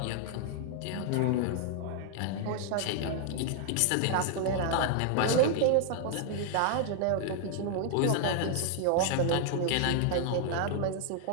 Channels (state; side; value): different; both; correlation 0.00